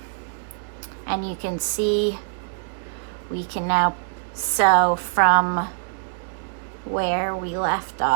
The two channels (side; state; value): left; silent; digital silence